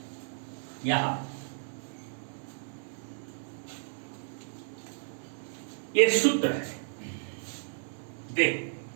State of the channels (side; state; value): left; silent; 56 dB below the other